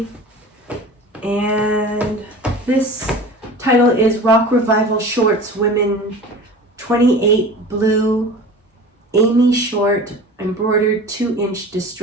and this title is Rock Revival Shorts Women 28 Blue Amy Short Embroidered 2-inch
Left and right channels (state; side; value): normal; both; correlation 0.38